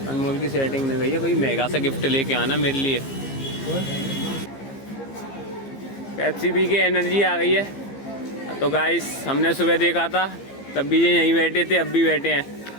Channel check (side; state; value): right; late; 15 ms